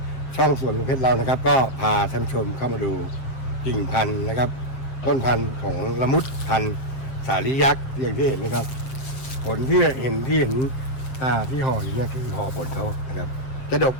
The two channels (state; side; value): late; right; 7.4 ms